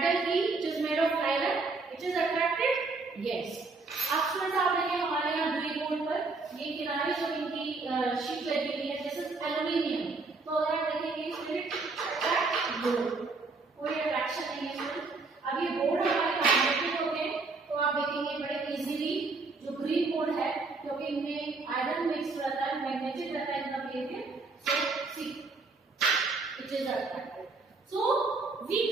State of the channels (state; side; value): quieter; left; 3.8 dB